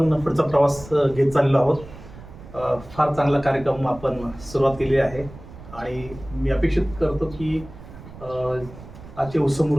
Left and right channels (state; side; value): noise; right; rumble, 17 dB below the sound